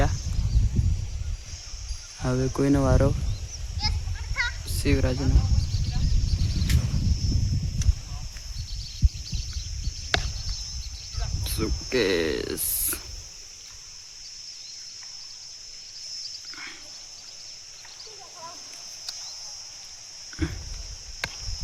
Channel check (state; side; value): identical; both; correlation 1.00